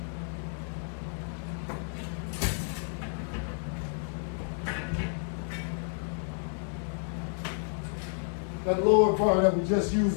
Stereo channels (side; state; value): right; silent; 57 dB below the other